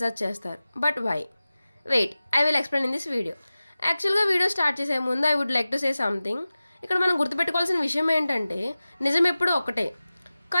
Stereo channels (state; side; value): inverted; both; correlation -0.96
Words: చేస్తారు. But why? Wait, I will explain in this video. యాక్చువల్గా వీడియో స్టార్ట్ చేసే ముందు I would like to say something. ఇక్కడ మనం గుర్తుపెట్టుకోవాల్సిన విషయం ఏంటంటే నిజం ఎప్పుడూ ఒకటే,